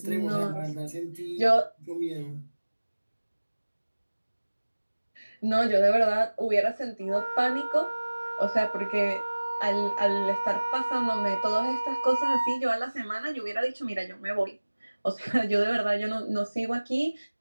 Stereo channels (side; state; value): both; inverted; correlation -1.00